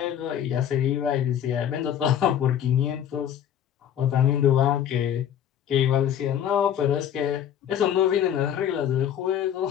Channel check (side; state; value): right; quieter; 9.7 dB